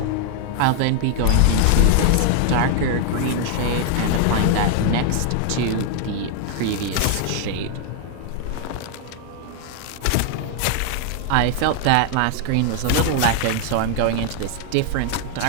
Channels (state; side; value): different; both; correlation 0.00